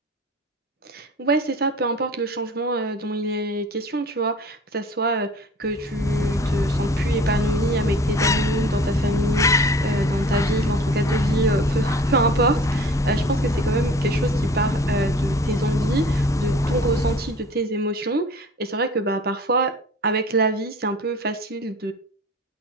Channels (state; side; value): normal; both; correlation 0.45